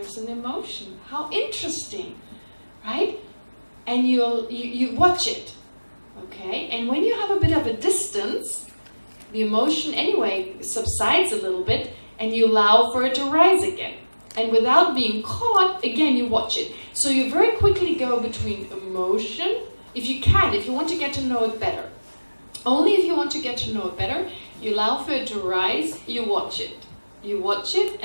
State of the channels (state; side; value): inverted; both; correlation -1.00